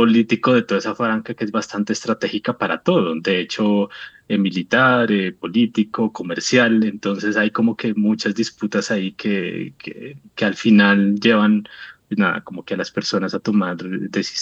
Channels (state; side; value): identical; both; correlation 1.00